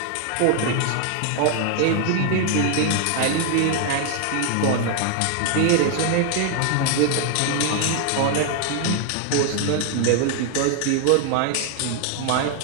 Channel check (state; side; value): different; both; correlation 0.00